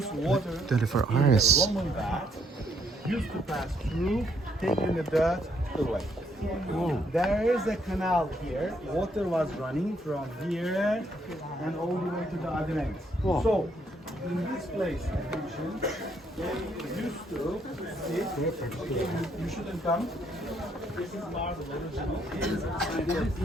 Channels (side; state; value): both; normal; correlation 0.70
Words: water 24 in hours. the Roman bath used to pass through, taking the dirt away. There is a canal here. Water was running from here and all the way to the other end. So, in this place, attention, they used to sit. Okay, you shouldn't come. This is marble original.